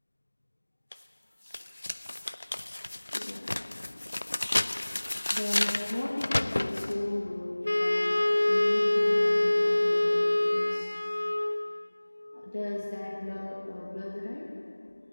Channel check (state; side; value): inverted; both; correlation -1.00